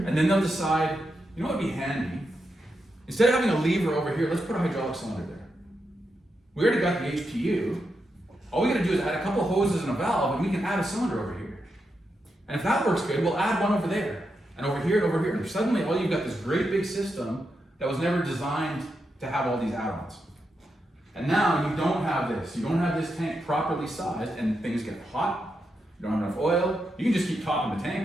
and then they'll decide, you know what would be handy? Instead of having a lever over here, let's put a hydraulic cylinder there. We already got the HPU. All we gotta do is add a couple hoses and a valve, and we can add a cylinder over here. And if that works good, we'll add one over there, and over here, and over here. And suddenly, all you've got this great big system that was never designed to have all these add-ons. And now you don't have this. You don't have this tank properly sized, and things get hot. You don't have enough oil. You can just keep topping the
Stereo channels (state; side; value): normal; both; correlation 0.85